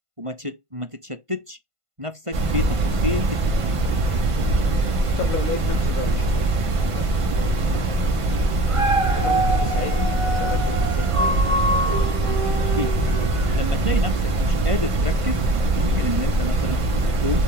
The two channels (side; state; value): left; late; 1.5 ms